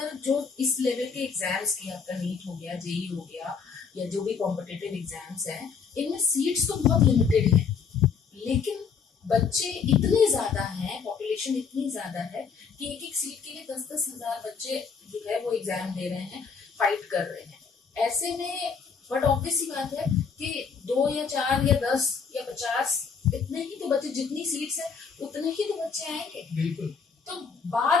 जो इस लेवल के एग्जाम्स की, आपका नीट हो गया, जेई हो गया, या जो भी कॉम्पिटिटिव एग्जाम्स हैं, इनमें सीट्स तो बहुत लिमिटेड है, लेकिन बच्चे इतने ज्यादा हैं, पॉपुलेशन इतनी ज्यादा है कि एक एक सीट के लिए 10-10 हजार बच्चे जो है वो एग्जाम दे रहे हैं, फाइट कर रहे हैं। ऐसे में बट ऑब्वियस सी बात है कि 2 या 4 या 10 या 50 इतने ही तो बच्चे, जितनी सीट्स है उतने ही तो बच्चे आएंगे। बिल्कुल। तो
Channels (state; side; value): quieter; right; 5.9 dB